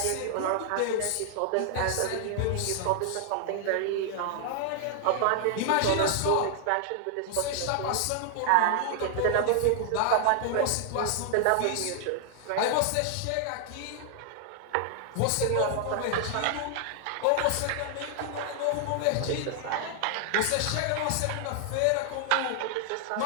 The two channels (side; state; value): both; different; correlation 0.00